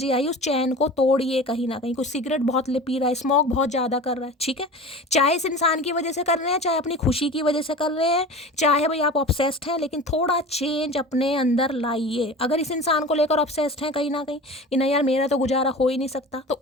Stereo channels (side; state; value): both; normal; correlation 0.35